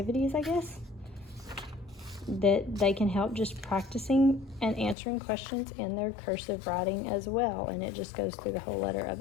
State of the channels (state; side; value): drops out; right; at 5.0 s